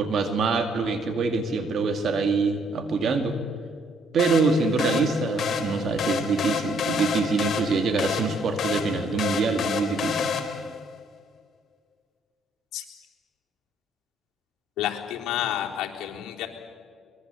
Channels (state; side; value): normal; both; correlation 0.66